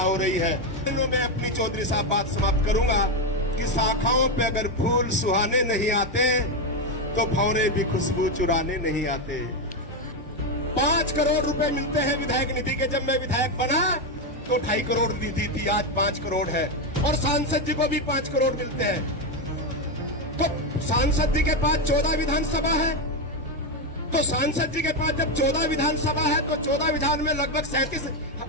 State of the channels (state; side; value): normal; both; correlation 0.08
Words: रही है। मैं अपनी चौधरी साहब बात समाप्त करूंगा कि शाखाओं पे अगर फूल सुहाने नहीं आते तो भंवरे भी खुशबू चुराने नहीं आते। 5 करोड़ रुपए मिलते हैं विधायक निधि के। जब मैं विधायक बना तो 2.5 करोड़ निधि थी, आज 5 करोड़ है। और सांसद जी को भी 5 करोड़ मिलते हैं। तो सांसद जी के पास 14 विधानसभा है, तो सांसद जी के पास जब 14 विधानसभा है तो 14 विधान में लगभग 37